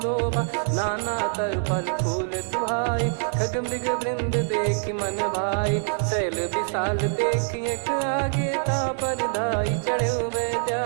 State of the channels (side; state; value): left; silent; 62 dB below the other